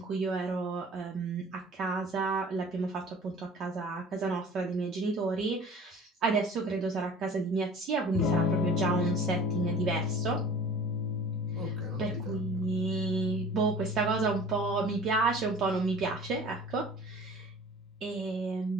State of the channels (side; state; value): both; normal; correlation 0.45